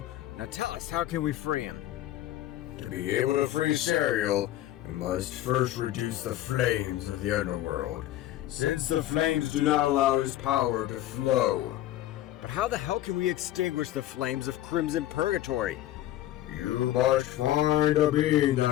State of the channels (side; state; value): right; quieter; 13.8 dB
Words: now tell us, how can we free him? To be able to free Serial, we must first reduce the flames of the underworld, since the flames do not allow his power to flow. But But how the hell can we extinguish the flames of Crimson Purgatory? You must find a being